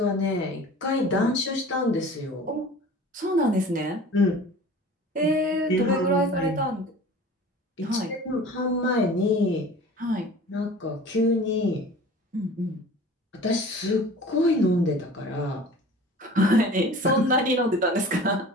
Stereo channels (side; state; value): both; normal; correlation 0.42